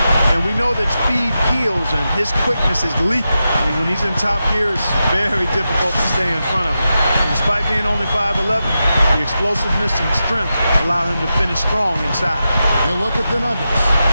And we know that speed kills, and his quickness is lethal. I mean, when he's in top gear, it's very difficult to stay in front of him. And despite being only 5'11", the explosiveness and strength allow him to finish strong inside. You look at the Nuggets.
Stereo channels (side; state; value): both; inverted; correlation -0.90